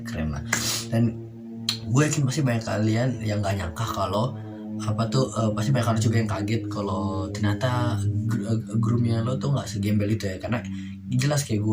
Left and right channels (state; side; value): identical; both; correlation 1.00